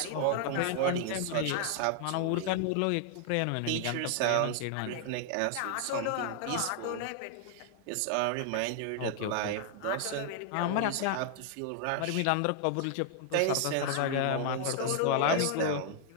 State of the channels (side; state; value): both; different; correlation 0.00